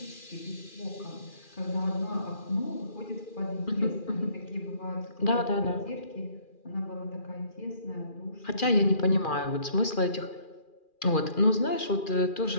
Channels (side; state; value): right; late; 2.4 ms